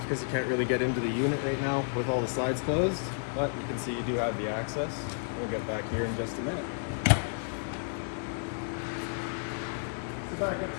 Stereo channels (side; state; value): right; silent; digital silence